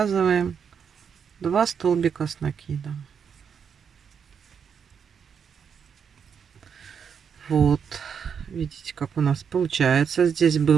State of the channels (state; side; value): quieter; left; 7.1 dB